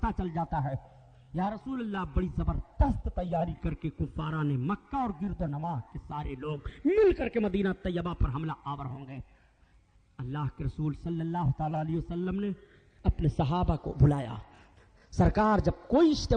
چل جاتا ہے، یا رسول اللہ بڑی زبردست تیاری کر کے کفاران مکہ اور گرد و نواح کے سارے لوگ مل کر کے مدینہ طیبہ پر حملہ آور ہوں گے۔ اللہ کے رسول صلی اللہ تعالی علیہ وسلم نے اپنے صحابہ کو بلایا۔ سرکار جب کوئی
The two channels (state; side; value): identical; both; correlation 1.00